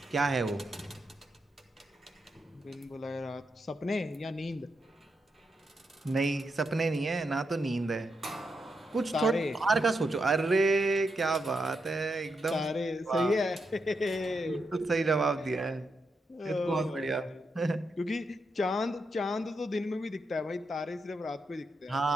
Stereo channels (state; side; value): normal; both; correlation 0.84